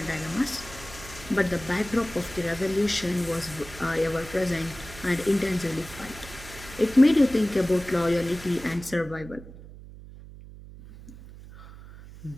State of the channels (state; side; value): noise; right; hum, 16 dB below the sound